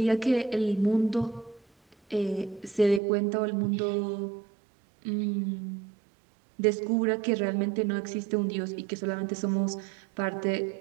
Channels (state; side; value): drops out; left; at 3.0 s